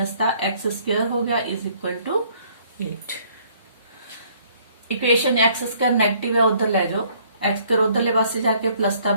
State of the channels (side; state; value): both; inverted; correlation -0.62